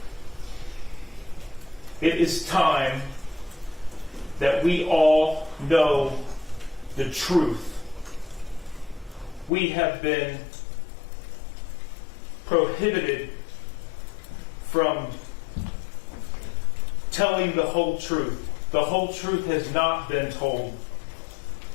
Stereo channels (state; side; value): drops out; right; at 9.5 s